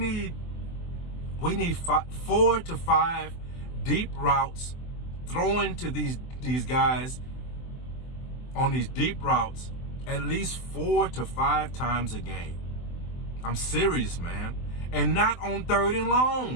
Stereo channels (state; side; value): late; right; 24 ms